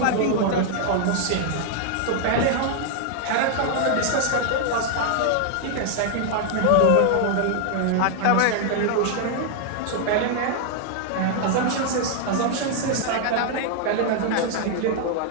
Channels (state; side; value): different; both; correlation 0.00